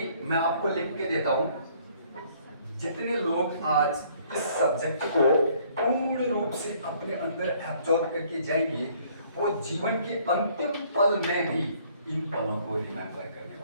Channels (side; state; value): both; inverted; correlation -0.61